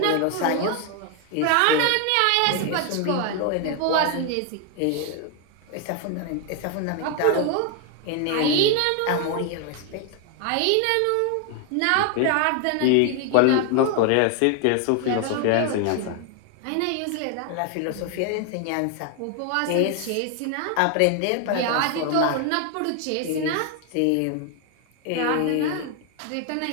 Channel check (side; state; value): both; different; correlation 0.01